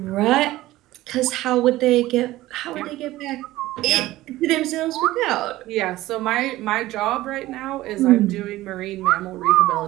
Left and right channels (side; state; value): left; quieter; 16.8 dB